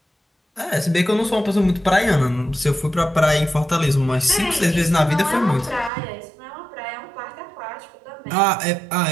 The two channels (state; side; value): drops out; left; at 5.9 s